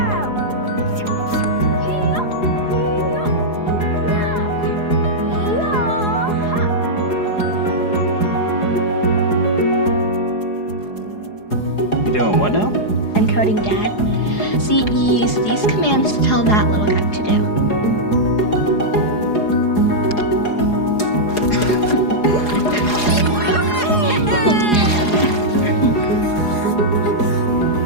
You doing what now? Encoding, Dad. See, you use these commands to tell that little guy to do.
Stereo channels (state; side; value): late; right; 4.8 ms